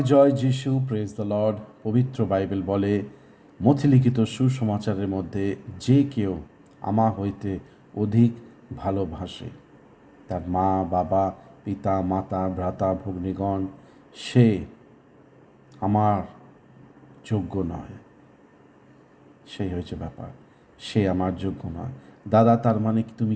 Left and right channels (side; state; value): both; identical; correlation 1.00